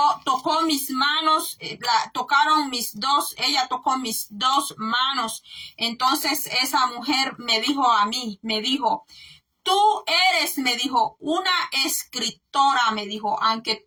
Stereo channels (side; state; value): both; identical; correlation 1.00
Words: mis manos, ella tocó mis dos manos. Entonces esa mujer me dijo a mí, tú eres, me dijo, una escritora, me dijo, aunque